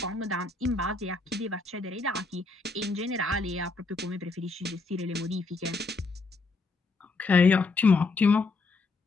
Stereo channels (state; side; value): quieter; right; 3.6 dB